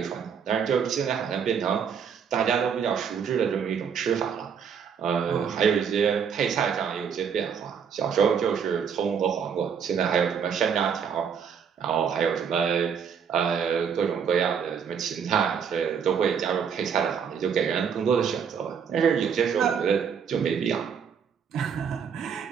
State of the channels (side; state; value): left; quieter; 7.1 dB